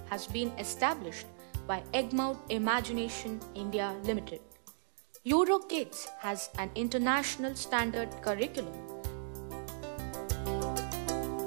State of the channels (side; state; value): left; silent; digital silence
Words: has been established by Egmont Imagination India Limited. Euro Kids has an international standard curriculum.